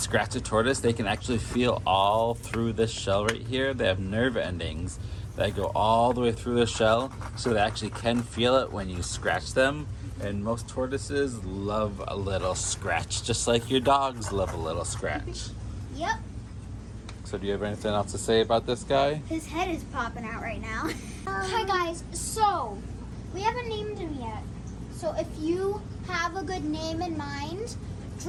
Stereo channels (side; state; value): both; identical; correlation 1.00